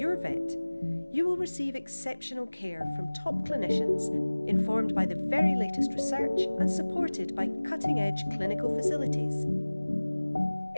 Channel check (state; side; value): inverted; both; correlation -1.00